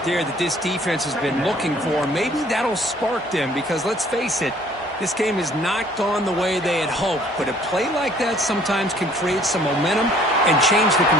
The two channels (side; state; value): both; normal; correlation 0.57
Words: there that this defense has been looking for. Maybe that'll spark them because, let's face it, this game has not gone the way they had hoped. But a play like that sometimes can create some momentum and change the